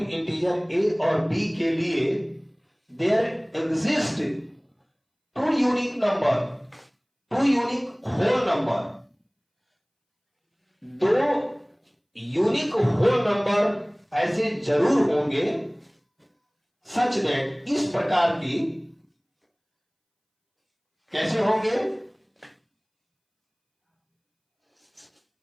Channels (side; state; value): both; identical; correlation 1.00